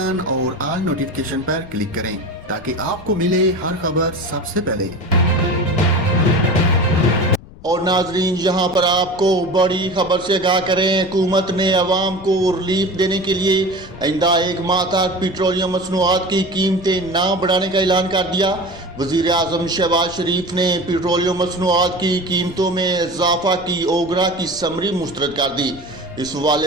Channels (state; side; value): noise; left; rumble, 19 dB below the sound